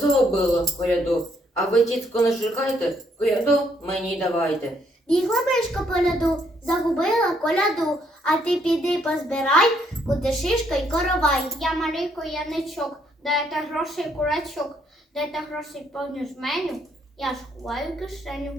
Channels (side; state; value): both; normal; correlation 0.71